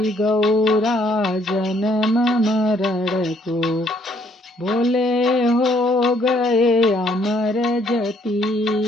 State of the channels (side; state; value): both; normal; correlation 0.67